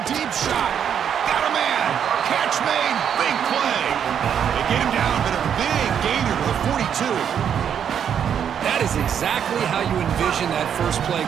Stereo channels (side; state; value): left; quieter; 8.4 dB